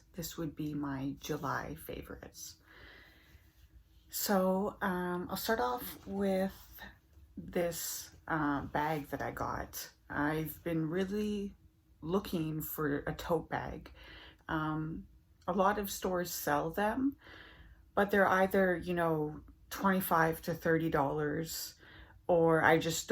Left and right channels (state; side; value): identical; both; correlation 1.00